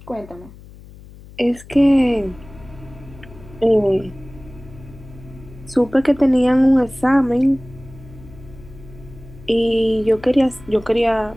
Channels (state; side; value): noise; left; hum, 20 dB below the sound